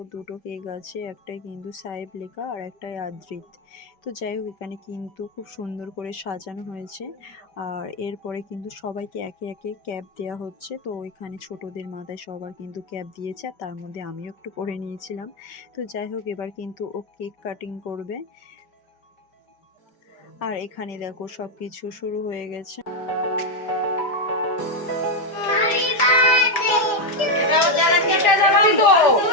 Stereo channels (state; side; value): late; right; 5.1 ms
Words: দুটো কেক আছে, একটাই কিন্তু সাহেব লেখা আর একটাই আদ্রিত। তো যাই হোক, এখানে কিন্তু খুব সুন্দর করে সাজানো হয়েছে। আর এরপরে কিন্তু সবাইকে একে একে ক্যাপ দেওয়া হচ্ছে। তো এখানে ছোটদের মাথায় সবার কিন্তু ক্যাপ দিয়েছে, আর তার মধ্যে আমিও একটু করে নিয়েছিলাম। তো যাই হোক, এবার কিন্তু ও কেক কাটিং করবে। আর এখানে দেখো সবকিছু শুরু হয়ে গেছে।